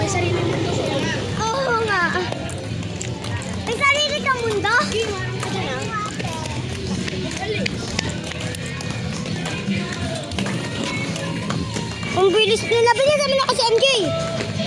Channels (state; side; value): identical; both; correlation 1.00